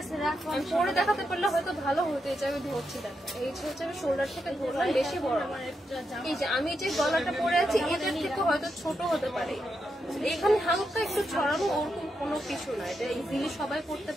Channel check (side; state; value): both; normal; correlation 0.84